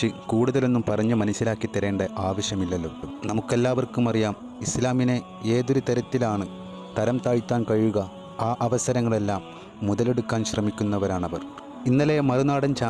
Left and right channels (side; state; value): both; identical; correlation 1.00